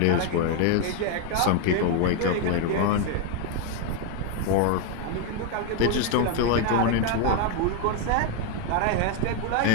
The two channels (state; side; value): different; both; correlation 0.01